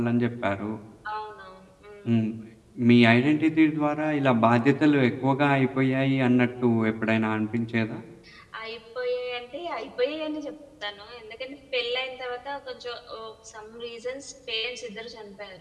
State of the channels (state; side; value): identical; both; correlation 1.00